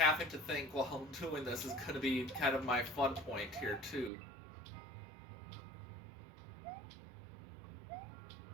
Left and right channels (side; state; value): left; drops out; at 4.1 s